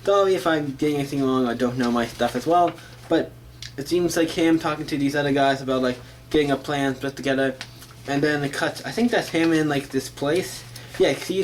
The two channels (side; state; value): both; identical; correlation 1.00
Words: sorry if I'm getting anything wrong or don't know my stuff as well. But it seems like him talking to these other guys about like getting a plan put together, and then it cuts, I think that's him in like this place. Yeah, cause